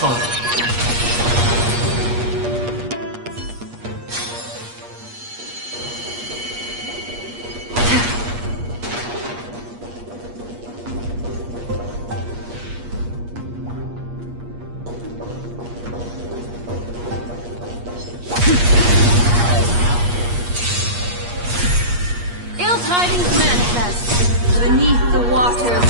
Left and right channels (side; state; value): left; late; 8.4 ms